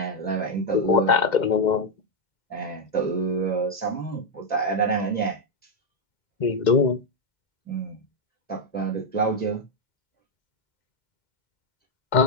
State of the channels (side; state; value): right; late; 2.1 ms